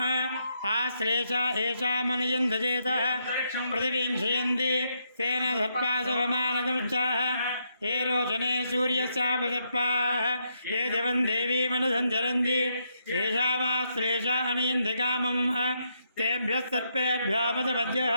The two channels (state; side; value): inverted; both; correlation -0.78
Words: आश्लेषा एषा मनयन्धजेतः पृथिवीं क्षयन्ति तेन सर्पाशवमानकमुच्चाः ये रोचने सूर्यस्यापसर्पाः ये दिवं देवीमनुसञ्चरन्ति येषामाश्लेषा अनयन्ति कामम् तेभ्यः सर्पेभ्यो